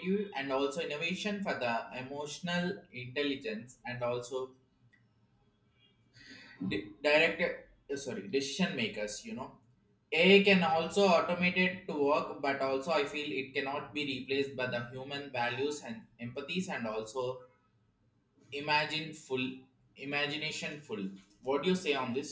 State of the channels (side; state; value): both; identical; correlation 1.00